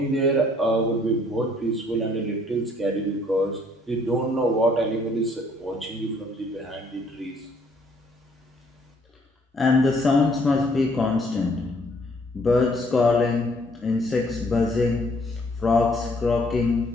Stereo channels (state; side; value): normal; both; correlation 0.64